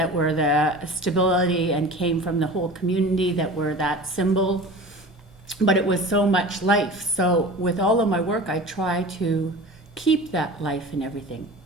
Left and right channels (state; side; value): normal; both; correlation 0.37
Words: were the stability and came from the whole community that were that symbol. But it was so much life. So with all of my work, I try to keep that life in everything